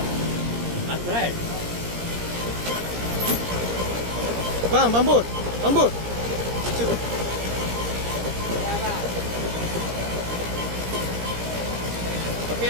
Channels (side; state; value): left; late; 17 ms